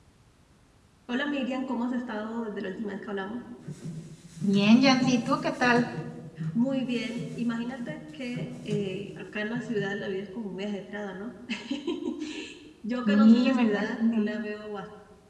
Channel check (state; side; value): identical; both; correlation 1.00